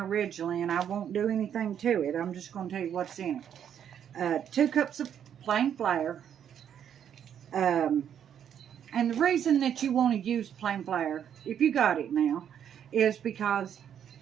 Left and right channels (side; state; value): left; quieter; 9.0 dB